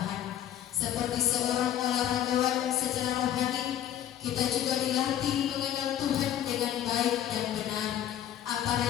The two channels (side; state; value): right; quieter; 11.1 dB